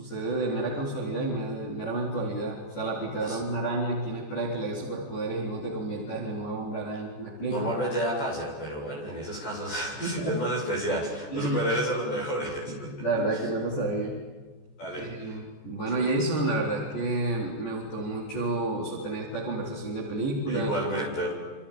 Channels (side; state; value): right; late; 14 ms